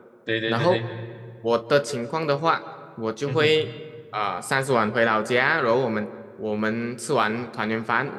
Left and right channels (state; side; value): identical; both; correlation 1.00